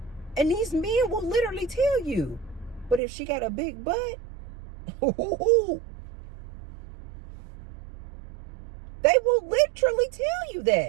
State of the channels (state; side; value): drops out; left; at 3.0 s